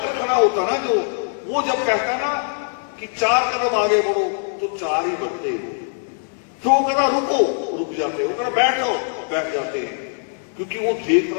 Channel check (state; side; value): silent; right; 65 dB below the other